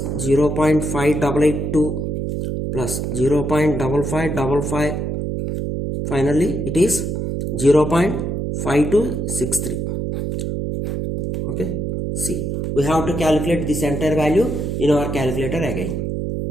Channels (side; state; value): right; noise; hum, 2 dB below the sound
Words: 0.5882 plus 0.5555. Finally it is 0.5263. Okay, see, we have to calculate this entire value in our calculator again.